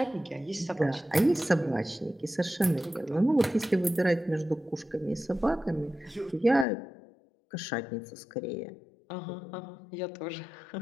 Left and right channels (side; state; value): right; drops out; at 6.7 s